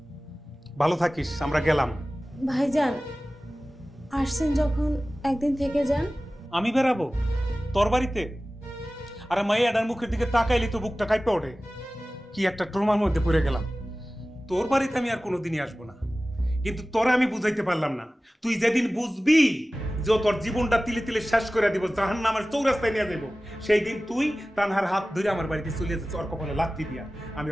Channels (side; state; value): both; normal; correlation 0.97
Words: ভালো থাকিস, আমরা গেলাম। ভাইজান আসছেন যখন একদিন থেকে যান। আমি বেরাবো তোর বাড়িতে? আরে মাইয়াডার মুখের দিকে তাকাইলি তো বুকটা কাঁপে ওঠে। কি একটা ট্রমার মধ্যে পড়ে গেলাম। তোর বাড়িতে আমি আর কোনোদিনই আসবো না, কিন্তু তোরা আমি বুঝাইতে পারলাম না। তুই যেদিন বুঝবি যে তোর জীবনটা তিলে তিলে শেষ করে দিব, জাহান্নামের চৌরাস্তায় নিয়ে যাবো, সেই দিন তুই তানহার হাত ধরে আমার বাড়িতে চলে যাচ্ছে, ওর কপালে লাথি দিয়া। আমি